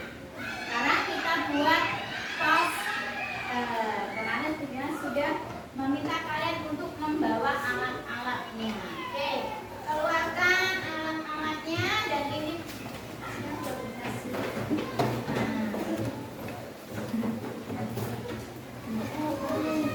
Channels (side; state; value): both; identical; correlation 1.00